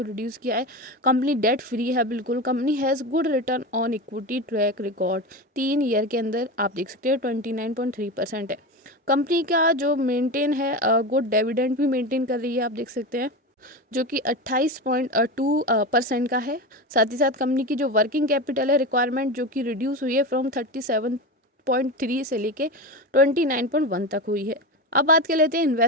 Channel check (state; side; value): normal; both; correlation 0.22